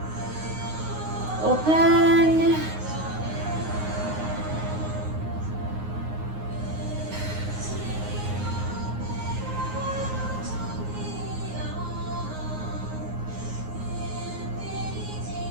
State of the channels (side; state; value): left; late; 9.5 ms